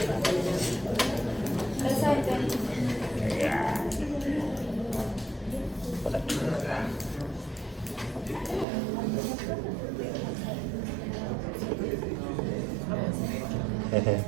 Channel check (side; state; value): left; drops out; at 8.7 s